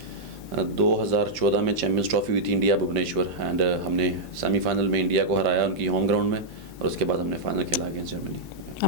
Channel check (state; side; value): normal; both; correlation -0.07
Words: 2014 में चैम्पियंस ट्रॉफी हुई थी इंडिया भुवनेश्वर, एंड हमने सेमीफाइनल में इंडिया को हराया उनकी होम ग्राउंड में, और उसके बाद हमने फाइनल खेला अगेंस्ट जर्मनी।